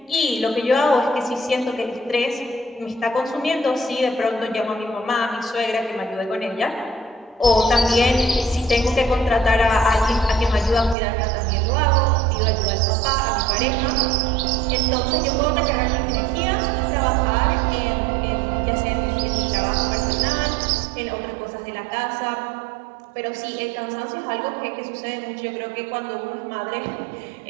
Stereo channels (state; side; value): drops out; left; at 11.0 s